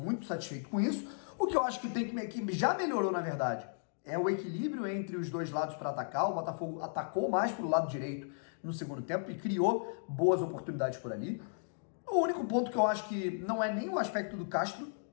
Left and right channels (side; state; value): right; silent; digital silence